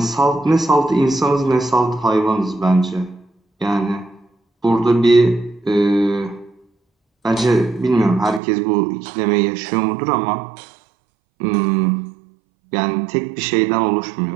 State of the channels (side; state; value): left; drops out; at 8.4 s